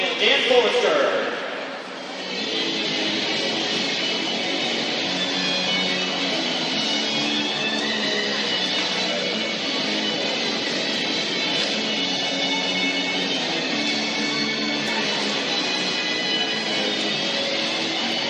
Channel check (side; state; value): both; identical; correlation 1.00